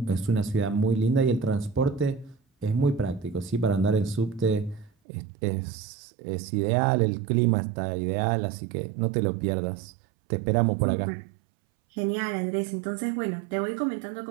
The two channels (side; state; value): left; drops out; at 4.9 s